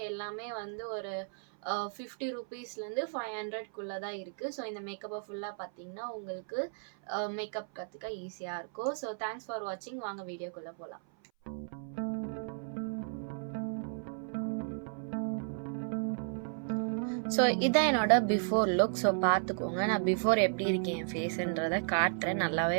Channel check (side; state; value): left; silent; 55 dB below the other